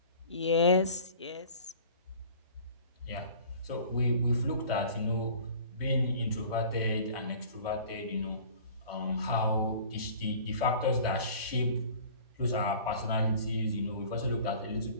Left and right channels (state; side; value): inverted; both; correlation -0.46